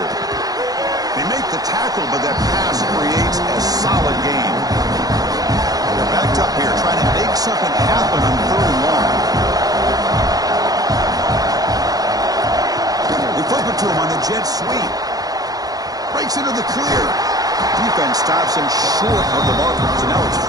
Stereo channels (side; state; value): left; late; 0.18 ms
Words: They make the tackle, but that pass creates a solid gain. They're backed up here, trying to make something happen on 3rd and long. They flip it to him on the jet sweep. Breaks into the clear. Defense stops him short of the marker, so now it's